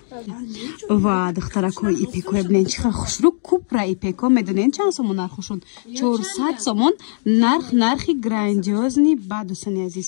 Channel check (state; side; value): silent; right; digital silence